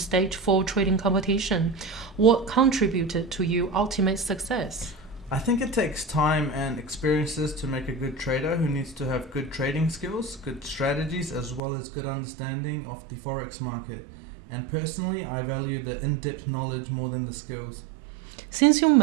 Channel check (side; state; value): left; drops out; at 11.6 s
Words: 4 trading competition. What contributed to your ultimate success? I think it takes time and experiences to make a good trader who needs to have good trading skills, good strategies, as well as good understanding of the forex market. And personally, I value the in-depth knowledge more than the skills. Since you